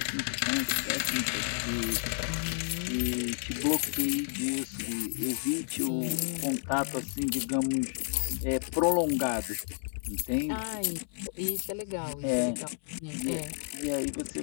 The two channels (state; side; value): silent; right; 57 dB below the other